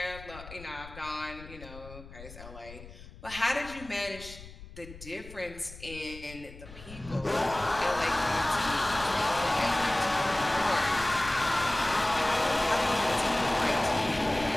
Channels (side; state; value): left; noise; rumble, 16 dB below the sound